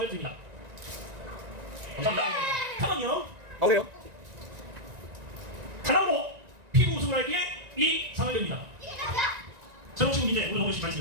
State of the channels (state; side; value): late; left; 1.9 ms